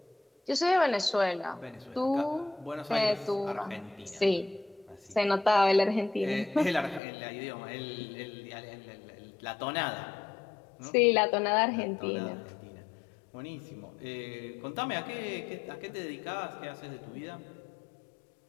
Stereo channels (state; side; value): drops out; right; at 7.0 s